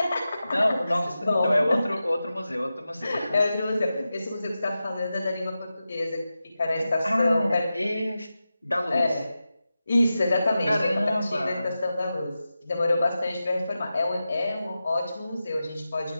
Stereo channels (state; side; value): inverted; both; correlation -0.92